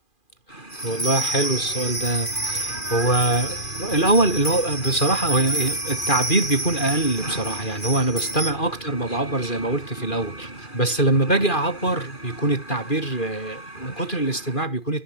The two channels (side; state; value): right; late; 2.4 ms